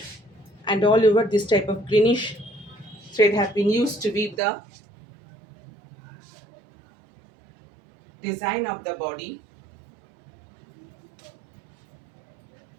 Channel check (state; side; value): drops out; left; at 4.4 s